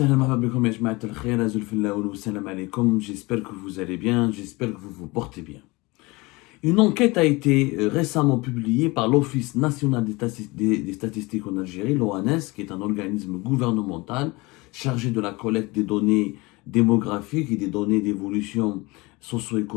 que vous allez bien, j'espère que vous vous portez bien. Une enquête a été récemment publiée par l'Office national des statistiques en Algérie, l'ONS, qui est un organisme gouvernemental chargé de la collecte des données démographiques et des données d'évolution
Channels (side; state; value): right; quieter; 23.8 dB